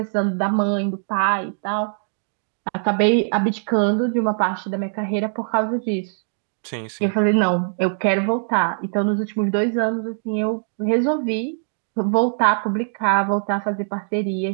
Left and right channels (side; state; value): left; silent; digital silence